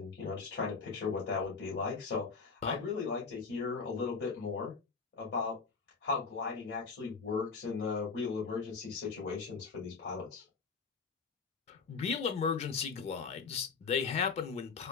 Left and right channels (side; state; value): right; quieter; 5.0 dB